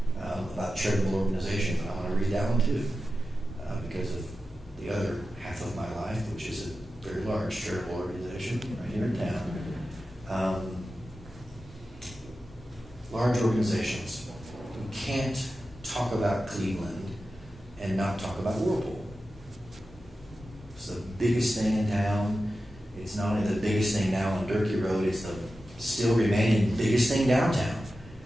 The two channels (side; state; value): both; normal; correlation 0.93